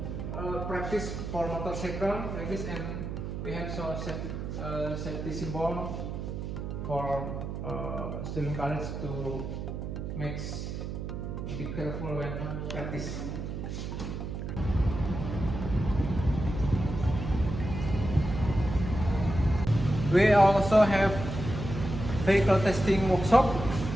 practice for motorcycle like this, and we have so safety symbol for student college to be careful when practice. We also have vehicle testing workshop.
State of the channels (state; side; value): noise; right; hum, 5 dB below the sound